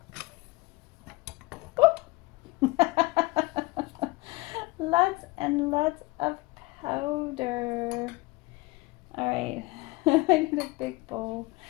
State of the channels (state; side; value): quieter; right; 22.9 dB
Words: Lots and lots of powder. All right, I need a big bowl.